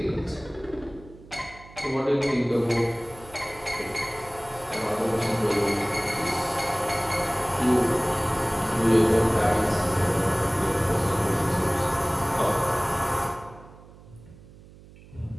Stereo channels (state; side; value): noise; right; hum, 21 dB below the sound